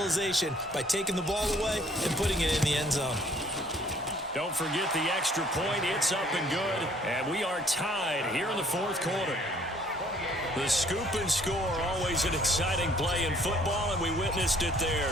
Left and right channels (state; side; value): normal; both; correlation 0.59